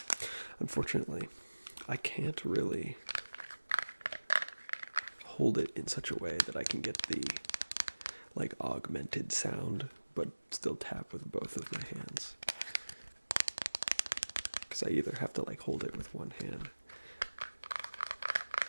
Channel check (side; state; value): both; inverted; correlation -1.00